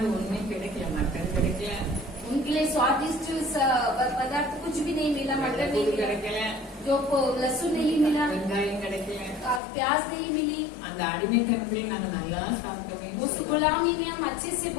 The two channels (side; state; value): right; drops out; at 9.6 s